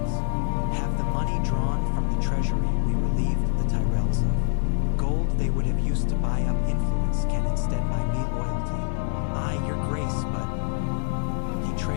Have the money drawn from the treasury we relieved the Tyrells of. Gold they would have used to buy up influence can instead buy me loyalty. Aye, your Grace, but... He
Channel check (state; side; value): silent; right; 56 dB below the other